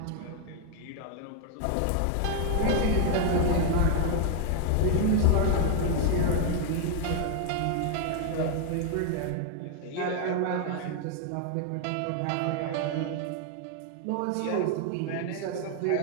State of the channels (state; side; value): different; both; correlation 0.00